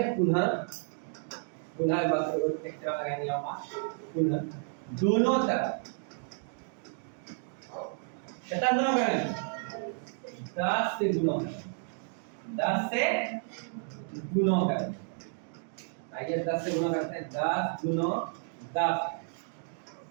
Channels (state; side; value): silent; left; 57 dB below the other